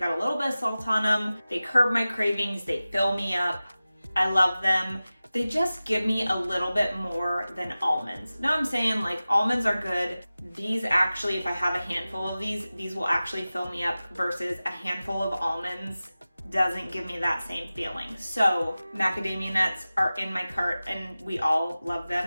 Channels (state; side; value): inverted; both; correlation -0.96